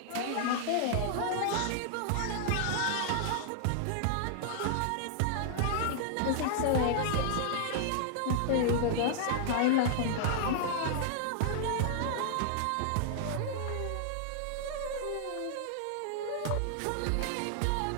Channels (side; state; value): both; different; correlation -0.01